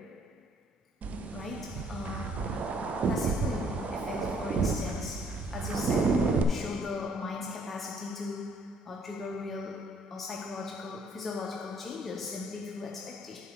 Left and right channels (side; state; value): both; normal; correlation 0.63